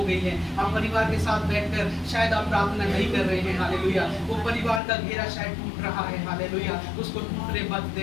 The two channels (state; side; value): drops out; right; at 4.8 s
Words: गई हैं। आप परिवार के साथ बैठकर शायद आप प्रार्थना नहीं कर रहे हैं। हालेलुया। वो परिवार का घेरा शायद टूट रहा है। हालेलुया। उसको टूटने मत